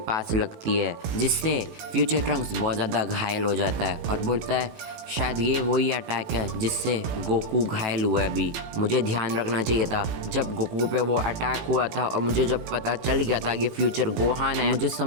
लगती है, जिससे फ्यूचर ट्रंक्स बहुत ज़्यादा घायल हो जाता है और बोलता है, शायद ये वही अटैक है जिससे गोकू घायल हुआ है अभी, मुझे ध्यान रखना चाहिए था जब गोकू पे वो अटैक हुआ था, और मुझे जब पता चल गया था कि फ्यूचर गोहान है, मुझे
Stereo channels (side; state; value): left; late; 18 ms